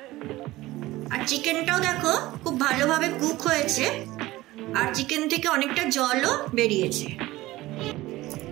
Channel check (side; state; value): left; quieter; 17.9 dB